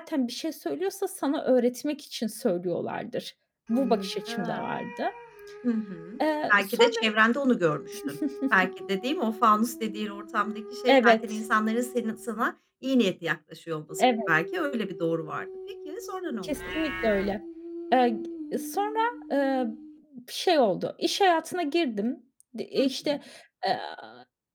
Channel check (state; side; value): identical; both; correlation 1.00